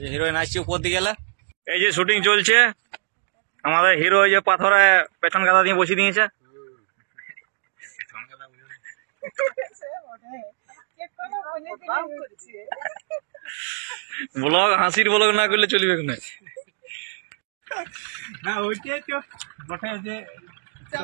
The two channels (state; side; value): silent; left; digital silence